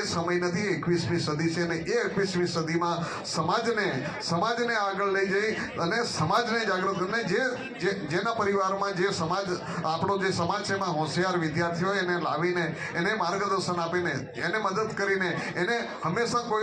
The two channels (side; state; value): both; identical; correlation 1.00